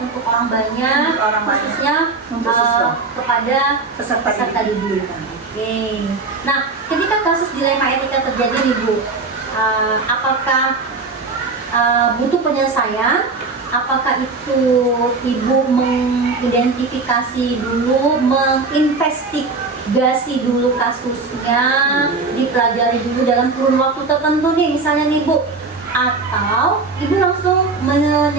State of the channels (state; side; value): quieter; left; 4.0 dB